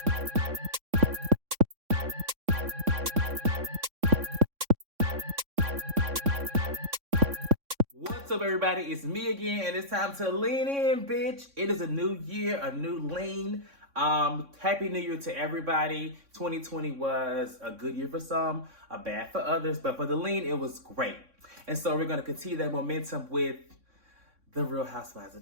What's up, everybody? It's me again, and it's time to lean in, bitch. It is a new year, a new lean. Happy New Year to everybody. 2020 was a good year for some, a bad for others, but for the lean, it was great. And so we're gonna continue that momentum with the Real Housewives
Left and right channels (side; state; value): left; late; 3.6 ms